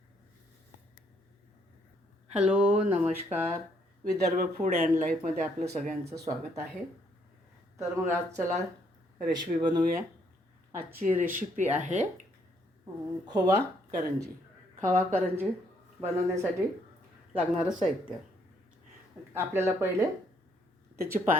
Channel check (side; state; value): both; normal; correlation 0.70